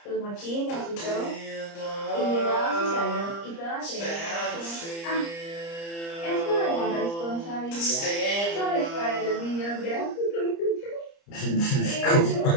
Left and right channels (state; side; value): late; right; 30 ms